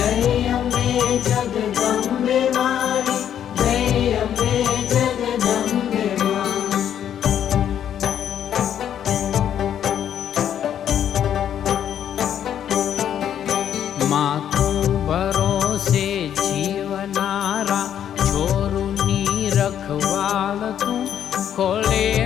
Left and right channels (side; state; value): right; quieter; 9.7 dB